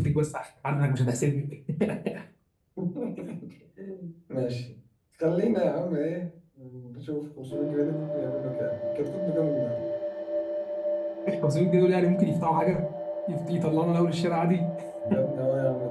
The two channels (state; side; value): identical; both; correlation 1.00